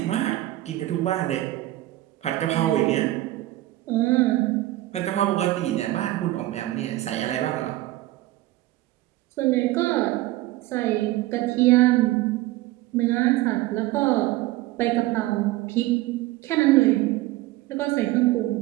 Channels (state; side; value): quieter; left; 16.8 dB